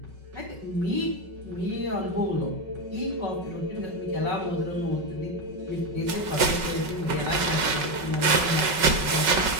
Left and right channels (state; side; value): late; left; 5.3 ms